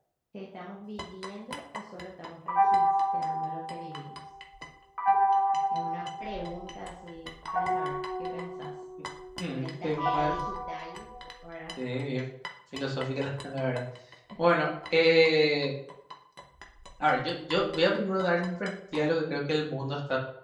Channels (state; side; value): identical; both; correlation 1.00